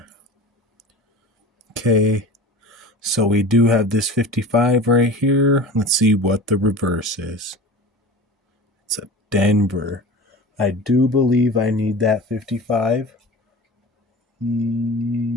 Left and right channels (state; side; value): normal; both; correlation 0.35